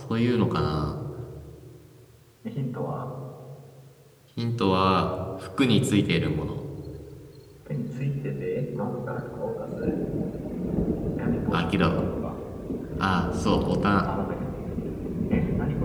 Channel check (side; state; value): both; identical; correlation 1.00